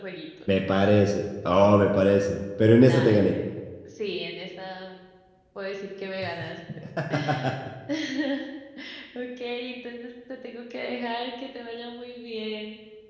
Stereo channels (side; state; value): both; identical; correlation 1.00